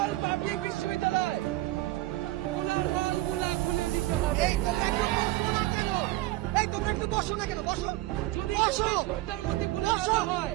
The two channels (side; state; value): left; quieter; 17.4 dB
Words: পাবলিক বিশ্ববিদ্যালয় গুলা খুলে দিতে হবে। তোমরা একটু বসো না কেন? বসো, যদি বসো, 24 ঘন্টার মধ্যে খুলে দেওয়া হয়